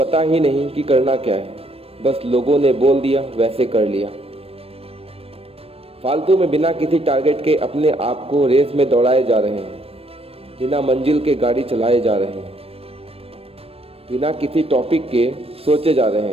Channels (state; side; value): late; left; 0.28 ms